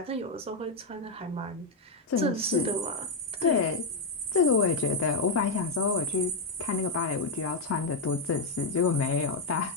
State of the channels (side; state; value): right; quieter; 3.2 dB